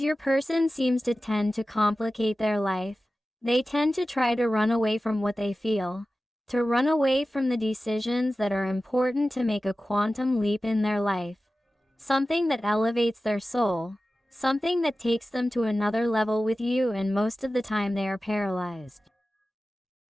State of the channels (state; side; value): normal; both; correlation 0.95